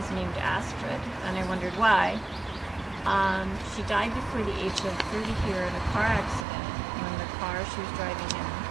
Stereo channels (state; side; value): drops out; left; at 6.5 s